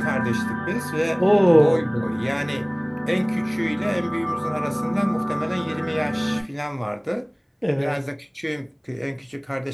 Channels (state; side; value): identical; both; correlation 1.00